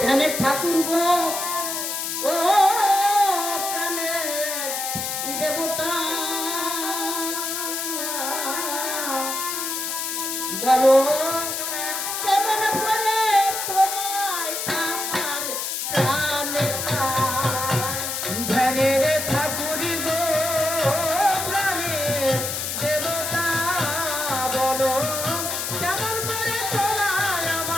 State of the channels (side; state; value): left; noise; hiss, 3 dB below the sound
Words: ধ্যানের ঠাকুর গো, ও প্রাণের দেবতা, বলো কেমন করে তোমায় আমার প্রাণে পায়। ধ্যানের ঠাকুর গো প্রাণের দেবতা, বলো কেমন করে তোমায়